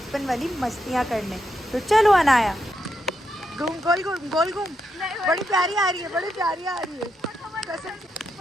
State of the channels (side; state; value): both; normal; correlation 0.82